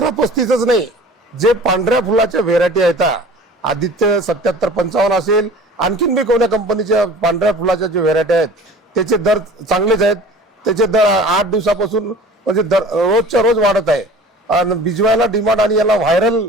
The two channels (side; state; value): both; normal; correlation 0.43